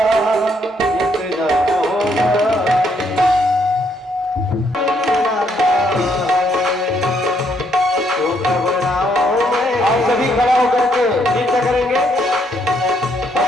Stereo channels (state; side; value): normal; both; correlation 0.72